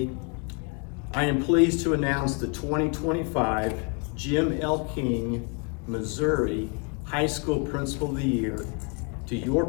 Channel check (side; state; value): right; quieter; 35.3 dB